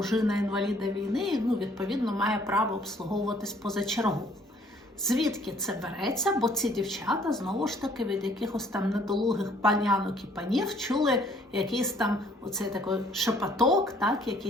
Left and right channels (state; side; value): normal; both; correlation 0.61